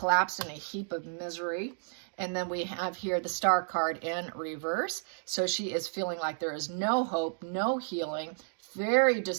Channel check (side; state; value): left; silent; digital silence